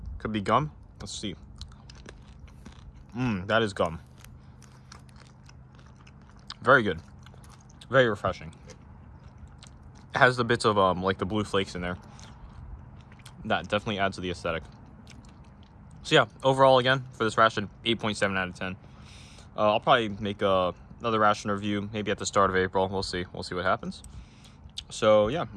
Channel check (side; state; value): both; identical; correlation 1.00